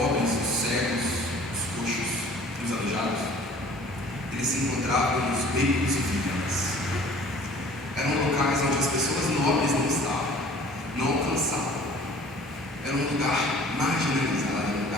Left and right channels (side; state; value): both; normal; correlation 0.49